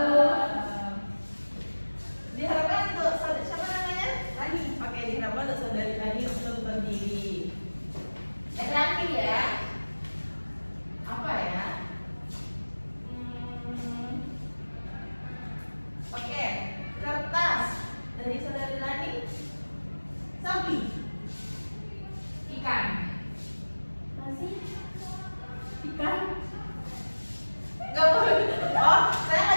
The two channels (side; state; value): both; inverted; correlation -1.00